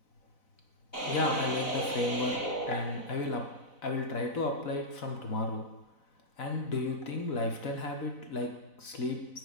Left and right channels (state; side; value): late; right; 4.0 ms